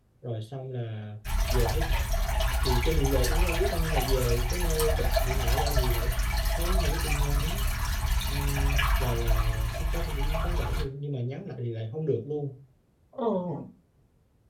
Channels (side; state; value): both; identical; correlation 1.00